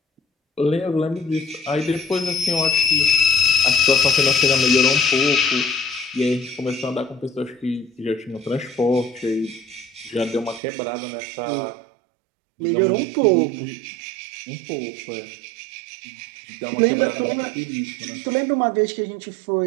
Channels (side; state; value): left; drops out; at 10.6 s